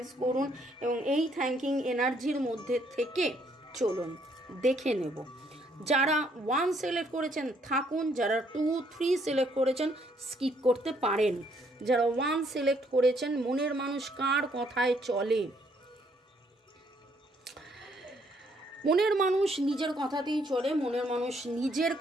করুন এবং এই থ্যাঙ্কিং এনার্জির মধ্যে থেকে চলুন। দেখে নেব যারা 1 সিলেক্ট করেছেন থাকুন, যারা 2, 3 সিলেক্ট করেছেন স্কিপ করতে পারেন। যারা 1 সিলেক্ট করেছেন, মনের মানুষ কার কথায় চলে? মনের মানুষ নিজের কথাতেই চলে, মনের মানুষ নিজের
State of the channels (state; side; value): normal; both; correlation 0.69